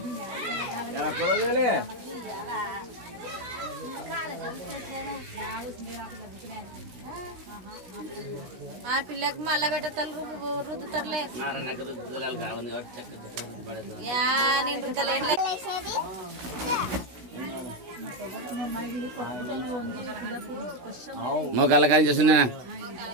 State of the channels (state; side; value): late; left; 16 ms